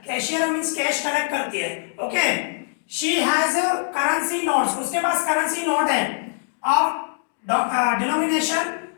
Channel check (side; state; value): right; silent; digital silence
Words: कैशियर मींस कैश कलेक्ट करती है। Okay, she has currency notes. उसके पास करेंसी नोट है of denomination